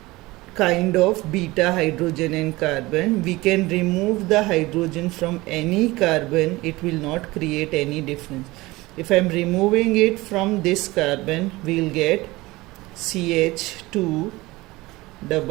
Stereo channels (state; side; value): quieter; left; 20.5 dB